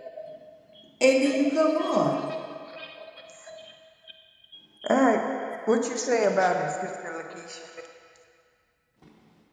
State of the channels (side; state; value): both; identical; correlation 1.00